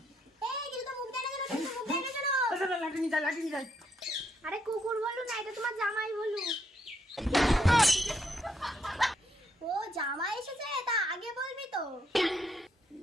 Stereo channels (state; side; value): normal; both; correlation 0.75